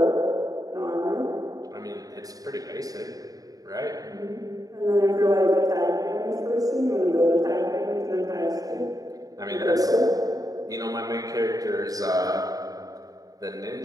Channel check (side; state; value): left; late; 0.18 ms